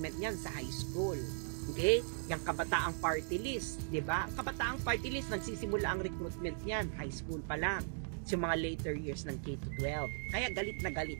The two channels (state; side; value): silent; left; 52 dB below the other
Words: niyan sa high school. Okay? Yung Kabataang Party List, di ba? Kabataang Party List, nagsisimula ang recruitment niyan, high school pa lang. Sa mga later years ng K-12. Kaya galit na galit